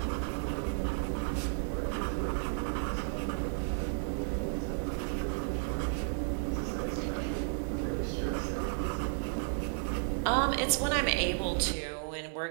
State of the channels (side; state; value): left; silent; digital silence